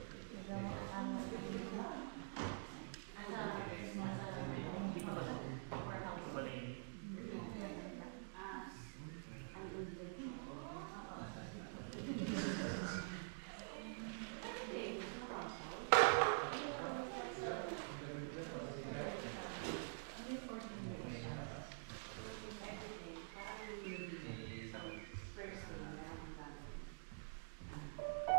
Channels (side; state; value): left; silent; digital silence